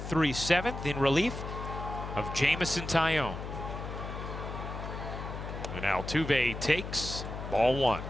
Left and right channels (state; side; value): noise; left; hum, 7 dB below the sound